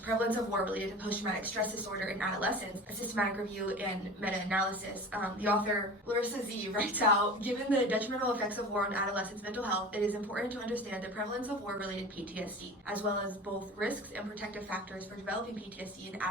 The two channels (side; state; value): both; normal; correlation 0.36